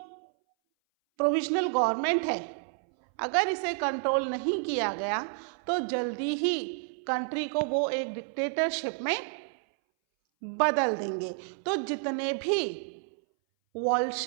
प्रोविजनल गवर्नमेंट है अगर इसे कंट्रोल नहीं किया गया तो जल्दी ही कंट्री को वो एक डिक्टेटरशिप में बदल देंगे। तो जितने भी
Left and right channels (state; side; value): silent; left; 58 dB below the other